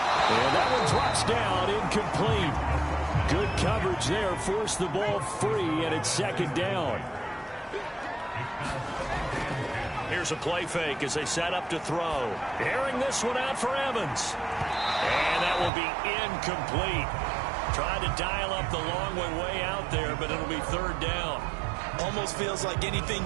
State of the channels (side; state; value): left; drops out; at 15.7 s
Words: And that one drops down, incomplete. Good coverage there, forced the ball free, and it's 2nd down. Here's a play fake as they set up to throw. Airing this one out for Evans. And that will be incomplete. Tried to dial up the long way out there, but it'll be 3rd down. Almost feels like anything